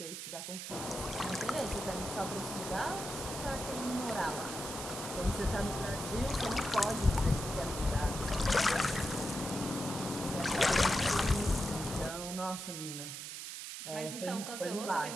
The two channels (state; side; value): noise; right; hiss, 7 dB below the sound